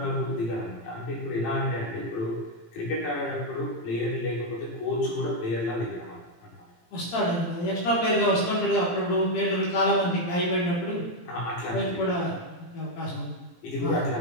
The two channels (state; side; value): late; right; 18 ms